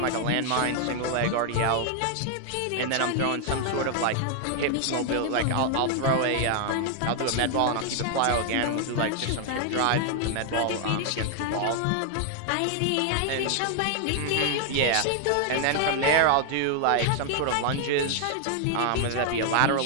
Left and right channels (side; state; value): both; different; correlation 0.00